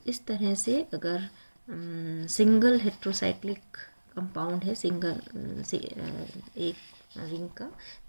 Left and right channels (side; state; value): both; inverted; correlation -1.00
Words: इस तरह से अगर सिंगल हेट्रोसाइक्लिक कंपाउंड है, सिंगल एक रिंग का,